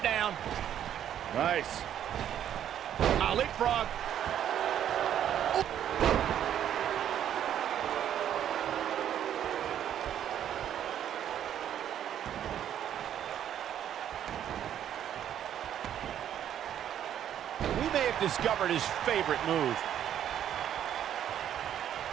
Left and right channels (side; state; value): left; quieter; 10.2 dB